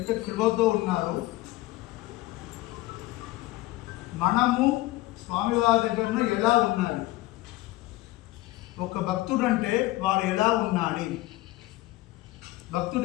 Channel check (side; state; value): right; quieter; 18.3 dB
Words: కృపతో ఉన్నారు, మనము స్వామివారి దగ్గర ఎలా ఉండాలి, ఒక భక్తుడు అంటే వాడు ఎలా ఉండాలి.